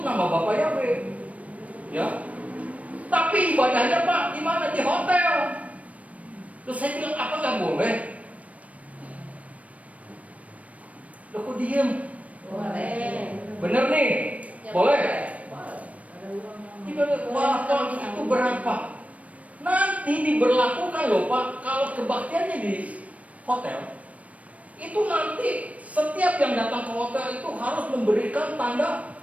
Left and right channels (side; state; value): left; late; 0.067 ms